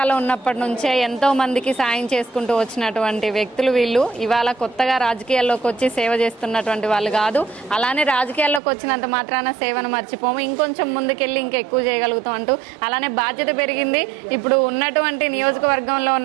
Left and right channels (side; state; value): left; drops out; at 8.6 s